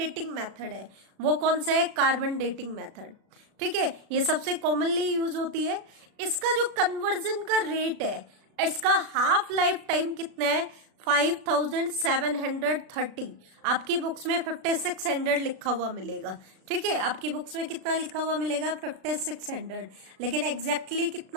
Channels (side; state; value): left; late; 36 ms